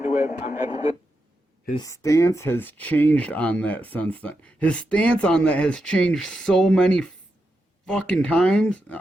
it. I'm at the His stance has changed on that since then. His stance on that has changed so many fucking times.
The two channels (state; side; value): normal; both; correlation 0.86